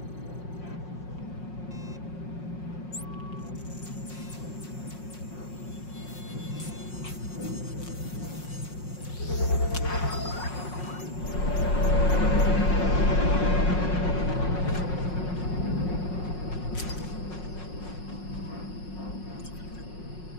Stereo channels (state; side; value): late; right; 5.5 ms